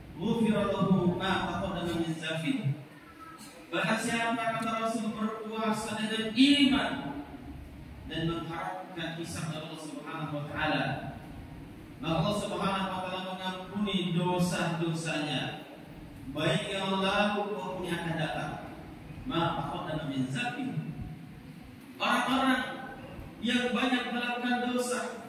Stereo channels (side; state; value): both; identical; correlation 1.00